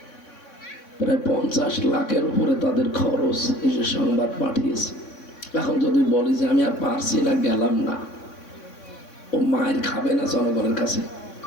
প্রায় 50 লাখের উপরে তাদের খরচ, এই যে সংবাদ পাঠিয়েছে। এখন যদি বলি যে আমি আর পারছি না, গেলাম না, ও মায়ের খাবে না জনগণের কাছে?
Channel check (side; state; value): right; late; 3.6 ms